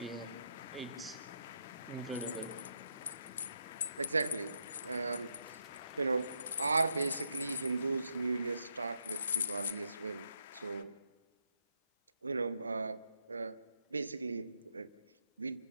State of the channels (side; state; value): both; inverted; correlation -0.80